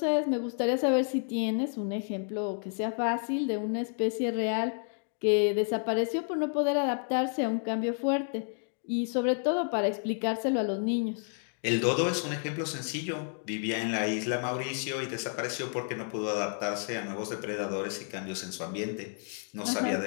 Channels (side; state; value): right; silent; 57 dB below the other